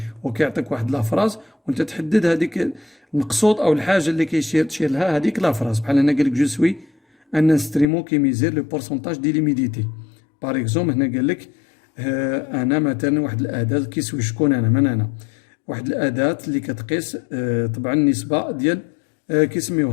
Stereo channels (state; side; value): drops out; right; at 7.9 s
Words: وكيعطيك واحد لا فراز وانت تحدد هذيك المقصود او الحاجه اللي تشير لها هذيك لا فراز. بحال هنا قال لك جو سوي ان انسترومون كي ميزير لو بورسونتاج دي ليميديتي. باغ اكزومبل هنا قال لك انا مثلا واحد الاداه كيسوي شكون انا من انا واحد الاداه اللي كتقيس طبعا النسبه ديال